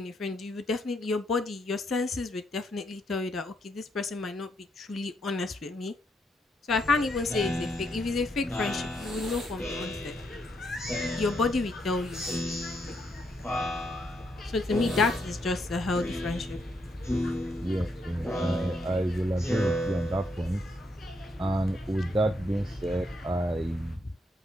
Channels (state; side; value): normal; both; correlation 0.77